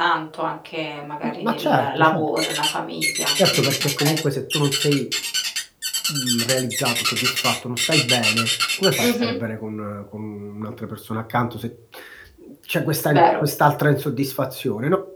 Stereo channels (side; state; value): both; identical; correlation 1.00